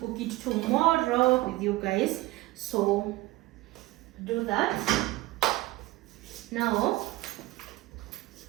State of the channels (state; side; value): quieter; left; 19.2 dB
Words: it tomorrow with you guys. So do that. Now,